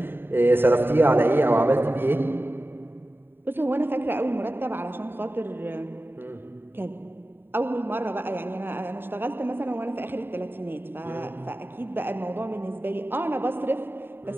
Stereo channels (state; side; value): late; left; 0.10 ms